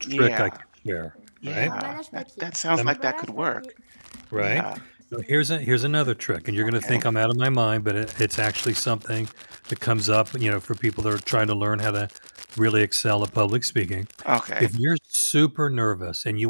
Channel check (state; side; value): inverted; both; correlation -1.00